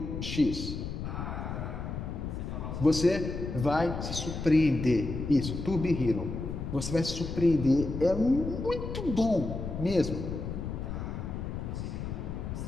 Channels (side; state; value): left; noise; rumble, 5 dB below the sound